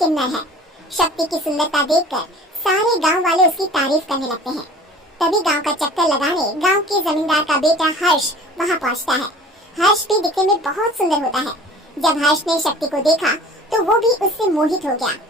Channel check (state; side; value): normal; both; correlation 0.45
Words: है। शक्ति की सुंदरता देखकर सारे गांव वाले उसकी तारीफ करने लगते हैं। तभी गांव का चक्कर लगाने गांव के जमींदार का बेटा हर्ष वहां पहुंचता है। हर्ष भी दिखने में बहुत सुंदर होता है। जब हर्ष ने शक्ति को देखा तो वो भी उससे मोहित हो गया,